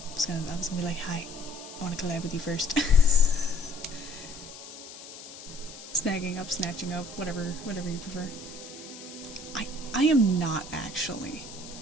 I was gonna be like, hi, I wanna collab with you first. Snagging up, snatching up, whatever you prefer. I am not actually.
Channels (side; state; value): left; noise; hiss, 14 dB below the sound